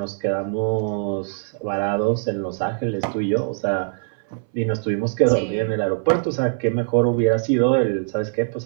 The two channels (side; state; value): left; silent; 60 dB below the other